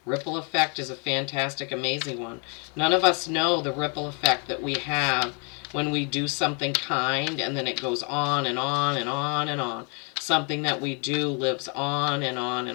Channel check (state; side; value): quieter; right; 34.5 dB